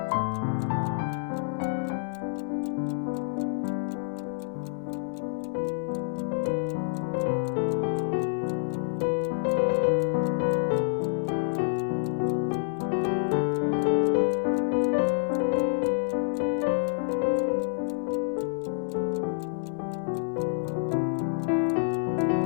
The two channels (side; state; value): right; silent; digital silence